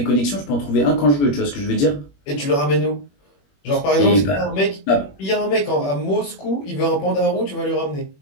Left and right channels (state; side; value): late; right; 21 ms